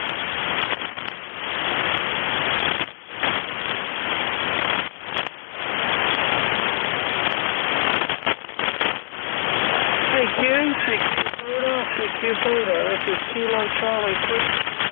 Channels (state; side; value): silent; right; 63 dB below the other